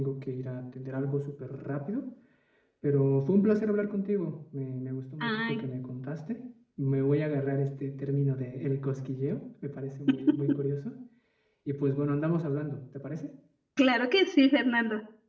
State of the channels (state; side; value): identical; both; correlation 1.00